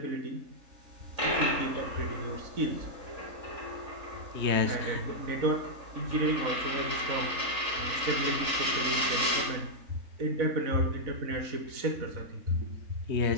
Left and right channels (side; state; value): left; late; 3.5 ms